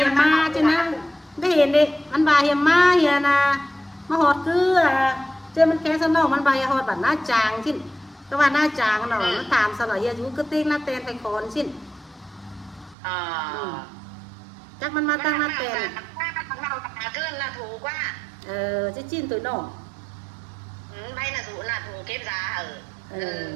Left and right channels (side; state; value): left; drops out; at 13.0 s